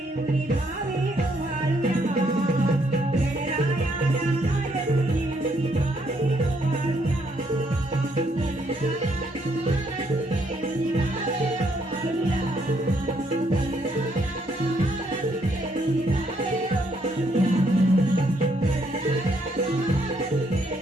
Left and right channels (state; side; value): normal; both; correlation 0.71